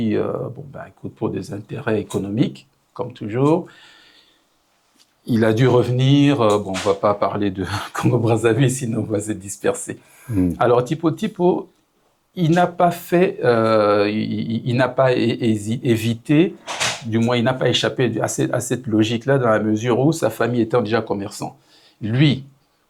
écoute, pour des intérêts économiques, comme toujours, il a dû revenir. On ne va pas parler de Congo-Brazzaville, sinon on va se disperser. Alors, Tipo, il n'a pas fait, il n'a pas évité, du moins, il n'a pas échappé à cette logique-là, dans la mesure où sa famille étant déjà commerçant. Lui,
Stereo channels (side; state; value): both; identical; correlation 1.00